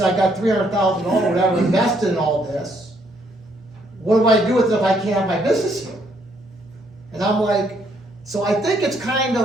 I got $300,000 or whatever invested in all this. What do I do with it if I can't have my business here? And I'm like, so I think it's kind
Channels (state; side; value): normal; both; correlation 0.70